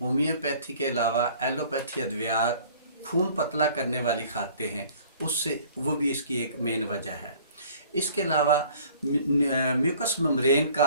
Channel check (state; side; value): inverted; both; correlation -0.53